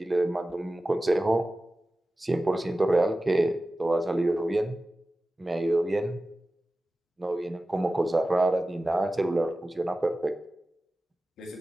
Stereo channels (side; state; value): both; normal; correlation 0.96